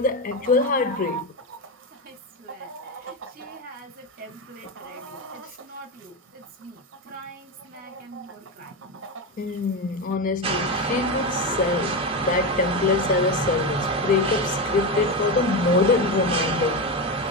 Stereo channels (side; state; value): both; normal; correlation 0.15